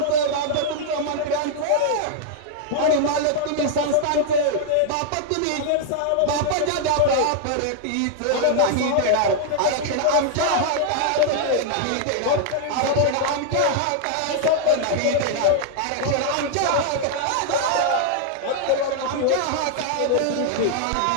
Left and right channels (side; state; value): both; different; correlation 0.00